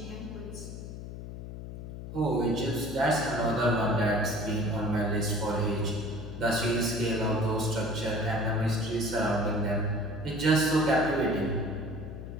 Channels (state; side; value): noise; left; hum, 10 dB below the sound